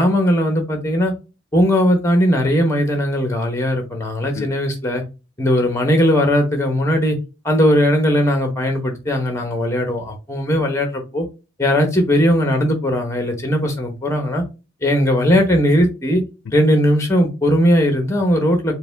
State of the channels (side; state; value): both; normal; correlation 0.73